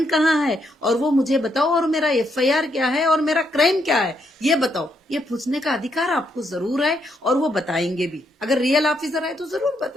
कहाँ है, और वो मुझे बताओ, और मेरा एफआईआर क्या है, और मेरा क्राइम क्या है, ये बताओ। ये पूछने का अधिकार आपको जरूर है, और वो बताएंगे भी। अगर रियल ऑफिसर है तो जरूर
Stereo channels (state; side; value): normal; both; correlation 0.76